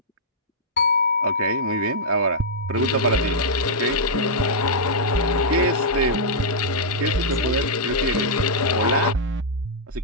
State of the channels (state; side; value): normal; both; correlation -0.09